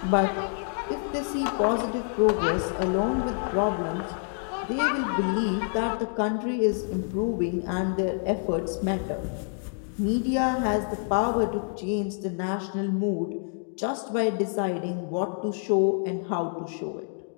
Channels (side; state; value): right; silent; 58 dB below the other